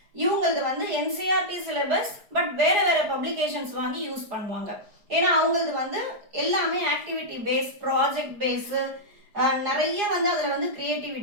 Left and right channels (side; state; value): left; late; 4.9 ms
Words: இவங்களுக்கு வந்து என்சிஆர்டி சிலபஸ், பட் வேறு வேறு பப்ளிகேஷன்ஸ் வாங்கி யூஸ் பண்ணுவாங்க. ஏன்னா அவங்களுக்கு வந்து எல்லாமே ஆக்டிவிட்டி பேஸ், ப்ராஜெக்ட் பேஸு, நிறைய வந்து அதில் வந்து